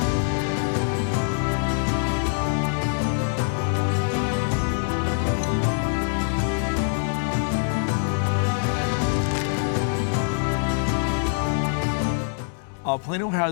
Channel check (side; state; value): right; silent; digital silence